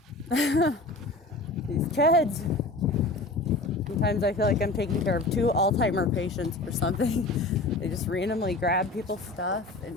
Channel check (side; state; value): right; quieter; 3.0 dB